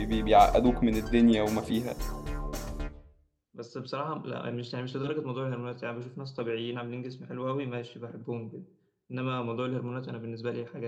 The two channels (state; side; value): identical; both; correlation 1.00